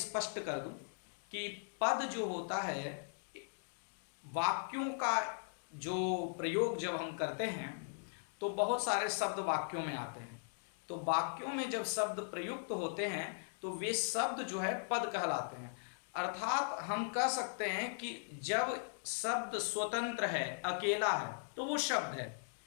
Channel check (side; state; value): right; silent; digital silence